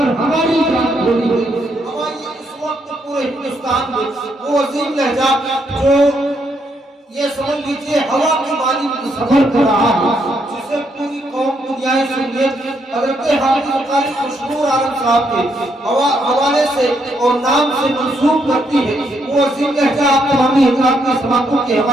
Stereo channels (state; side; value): normal; both; correlation 0.75